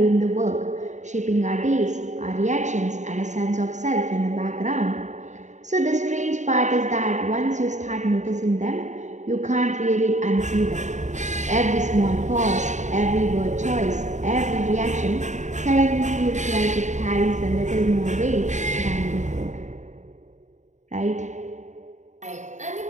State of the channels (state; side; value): late; left; 0.34 ms